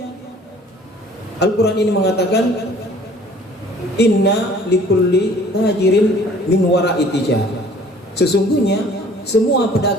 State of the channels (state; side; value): normal; both; correlation 0.52